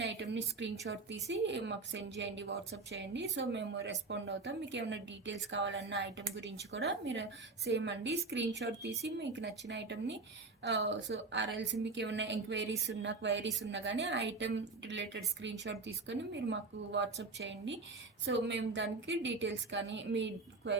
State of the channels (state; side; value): quieter; left; 3.8 dB